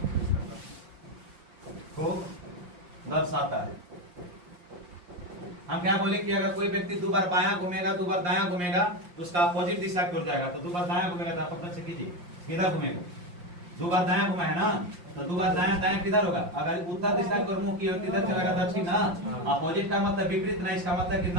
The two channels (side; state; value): left; late; 5.7 ms